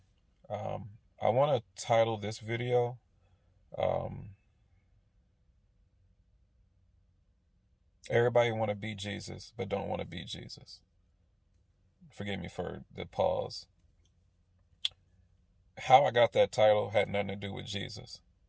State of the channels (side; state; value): both; identical; correlation 1.00